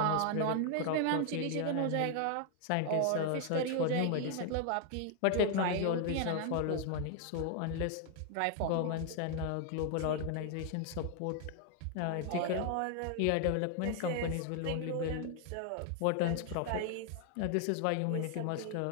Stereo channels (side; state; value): both; different; correlation 0.00